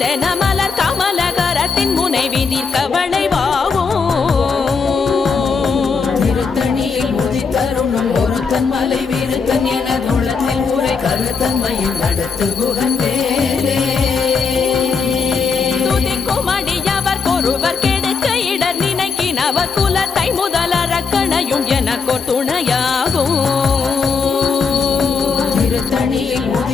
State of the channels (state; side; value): quieter; right; 5.2 dB